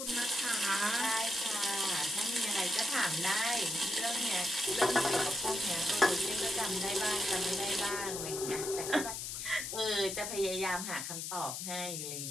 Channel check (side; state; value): left; noise; hiss, 5 dB below the sound